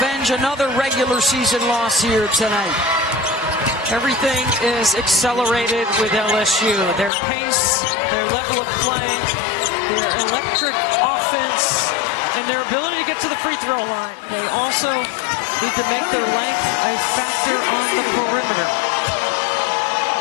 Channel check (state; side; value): drops out; right; at 7.1 s